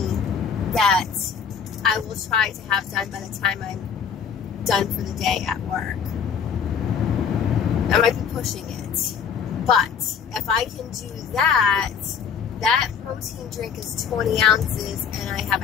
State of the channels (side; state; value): right; quieter; 7.0 dB